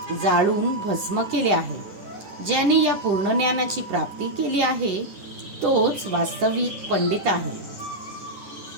जाळून भस्म केले आहे. ज्याने या पूर्ण ज्ञानाची प्राप्ती केली आहे तोच वास्तविक पंडित आहे.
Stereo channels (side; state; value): left; late; 10 ms